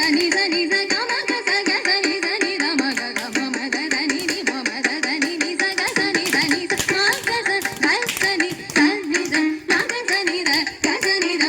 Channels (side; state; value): both; identical; correlation 1.00